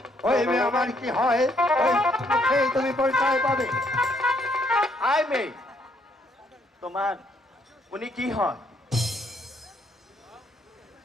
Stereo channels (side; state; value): both; normal; correlation 0.70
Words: ওই মেয়ে আমার কি হয়, ওই মুখেই তুমি পরিচয় পাবে। আয় মেয়ে, তোমার উনি কি হয়?